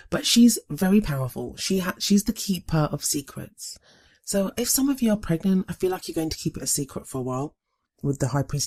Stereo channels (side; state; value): both; identical; correlation 1.00